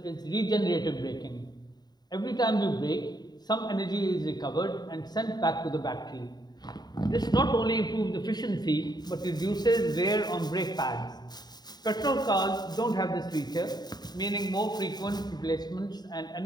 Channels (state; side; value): late; right; 0.20 ms